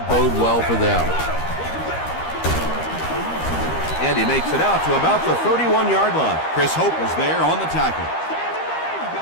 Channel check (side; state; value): right; late; 13 ms